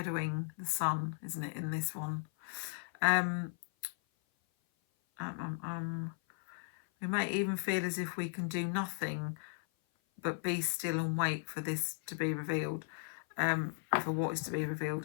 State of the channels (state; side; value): silent; right; 53 dB below the other